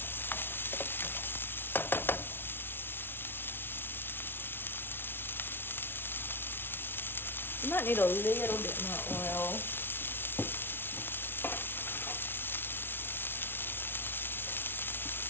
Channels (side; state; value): right; late; 0.11 ms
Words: You might need a little bit more oil.